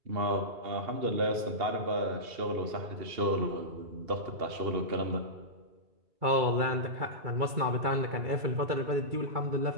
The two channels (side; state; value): left; late; 2.3 ms